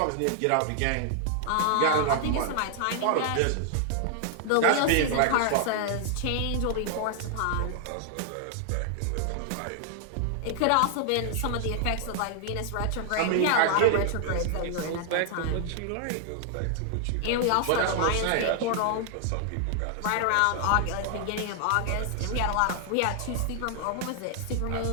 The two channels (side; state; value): both; different; correlation 0.00